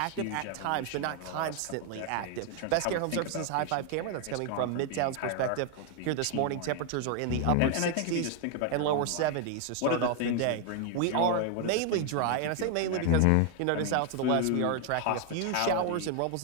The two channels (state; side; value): different; both; correlation 0.01